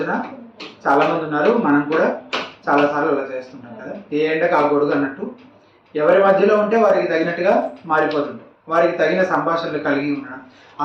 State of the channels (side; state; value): both; identical; correlation 1.00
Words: చాలామంది ఉన్నారు. మనం కూడా చాలాసార్లు అలా చేస్తుంటాం కదా, ఏ ఎండకు ఆ గొడుగు అన్నట్టు. ఎవరి మధ్యలో ఉంటే వారికి తగినట్టుగా మారిపోతుంటాం. వారికి తగిన సంభాషణలు కలిగి ఉండడం,